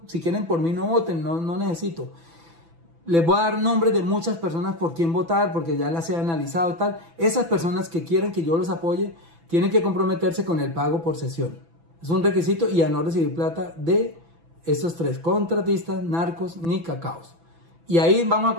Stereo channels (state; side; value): late; left; 6.0 ms